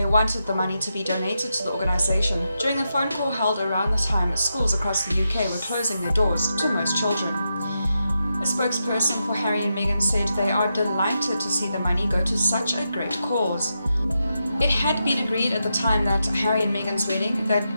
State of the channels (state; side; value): inverted; both; correlation -0.86